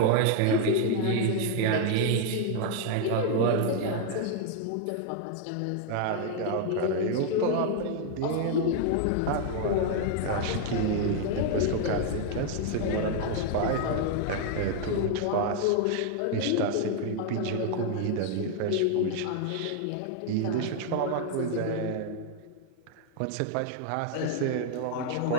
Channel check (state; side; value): different; both; correlation 0.00